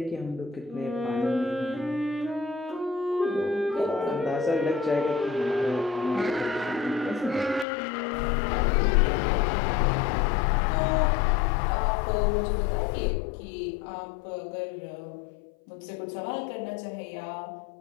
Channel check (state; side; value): drops out; right; at 7.7 s